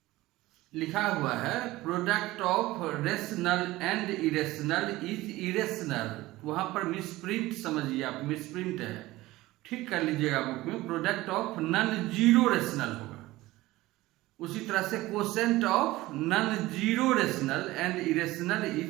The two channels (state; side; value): quieter; left; 18.2 dB